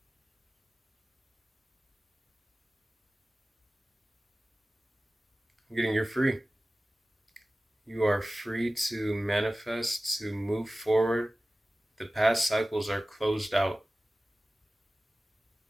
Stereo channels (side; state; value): both; normal; correlation 0.97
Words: You're free. You are free to manifest, to move forward. The past cycles are closed out.